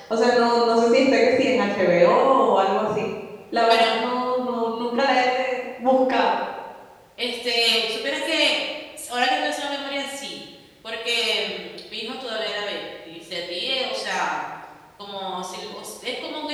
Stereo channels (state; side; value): identical; both; correlation 1.00